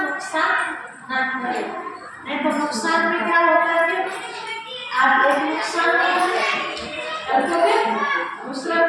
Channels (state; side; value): identical; both; correlation 1.00